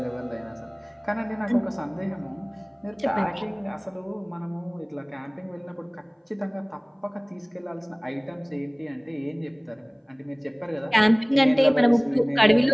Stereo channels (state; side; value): identical; both; correlation 1.00